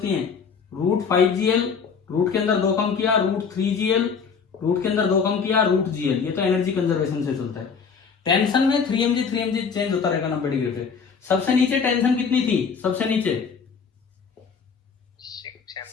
है, √5gl रूट के अंदर 2 कम किया, √3gl रूट के अंदर 2 कम किया, √gl। ये तो एनर्जी कंजर्वेशन से चलता है। टेंशन में 3mg चेंज होता रहेगा 90 डिग्री पे। सबसे नीचे टेंशन कितनी थी, सबसे नीचे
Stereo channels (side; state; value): right; quieter; 6.0 dB